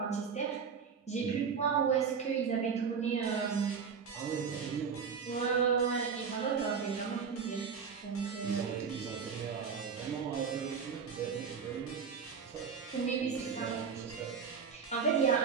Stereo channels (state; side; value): quieter; left; 6.2 dB